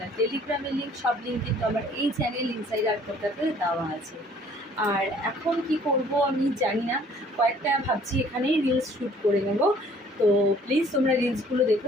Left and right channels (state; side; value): normal; both; correlation 0.57